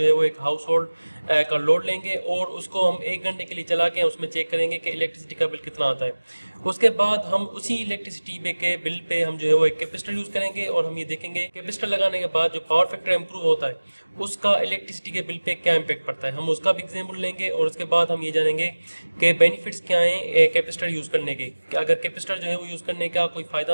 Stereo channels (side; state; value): both; inverted; correlation -1.00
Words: है वो एक हाउस होल्ड का लोड लेंगे और उसको हम 1 घंटे के लिए चला के उसमें चेक करेंगे कि इलेक्ट्रिसिटी का बिल कितना आता है। उसके बाद हम उसी इलेक्ट्रिसिटी के बिल पे हम जो है वो एक कैपेसिटर यूज़ करेंगे और हम ये देखेंगे कैपेसिटर लगाने के बाद जो पावर फैक्टर इंप्रूव होता है उसका इलेक्ट्रिसिटी के बिल पे क्या इम्पैक्ट पड़ता है। हम उसका भी एग्जाम्पल लेंगे और उसके बाद हम ये जानेंगे कि बेनिफिट्स क्या हैं कैपेसिटर यूज़ करने के। अगर कैपेसिटर जो है वो यूज़ करने का कोई